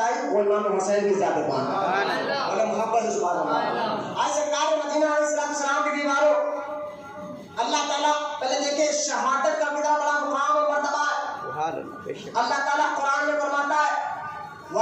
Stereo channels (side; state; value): both; identical; correlation 1.00